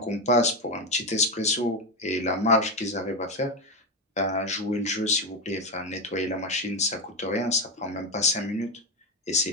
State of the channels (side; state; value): both; normal; correlation 0.11